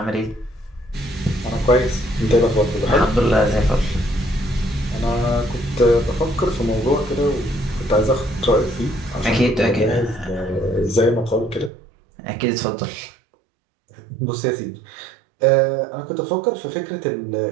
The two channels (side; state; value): left; drops out; at 11.7 s